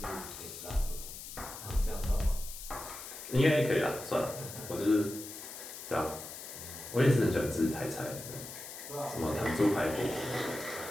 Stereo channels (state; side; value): noise; left; hiss, 11 dB below the sound